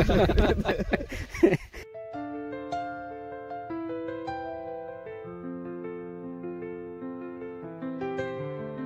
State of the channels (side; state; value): both; identical; correlation 1.00